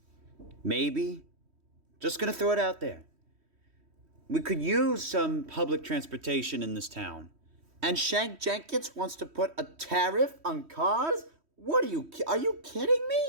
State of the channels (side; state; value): left; late; 3.1 ms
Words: Maybe. Just gonna throw it out there. We could use some public transportation in this town. And Shank Jenkins wants to put a tariff on cars? What are you kidding